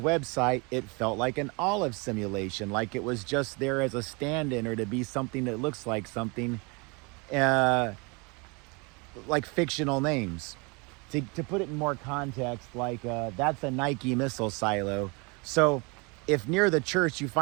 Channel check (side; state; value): left; quieter; 29.6 dB